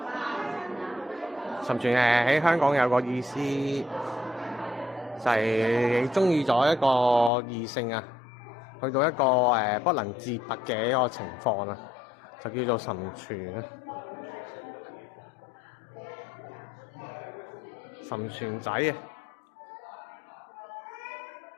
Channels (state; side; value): drops out; right; at 7.3 s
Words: 沉船喺香港有個意思，就係你中意咗一個異性啊，去到一個不能自拔嘅一個情況啊，就叫做沉船啊。沉船仔啊！